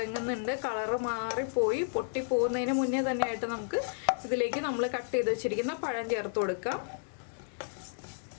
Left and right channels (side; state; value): right; silent; digital silence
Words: കളറ് മാറിപ്പോയി പൊട്ടിപ്പോകുന്നതിന് മുന്നേ തന്നെയായിട്ട് നമുക്ക് ഇതിലേക്ക് നമ്മൾ കട്ട് ചെയ്ത് വെച്ചിരിക്കുന്ന പഴം ചേർത്ത് കൊടുക്കാം.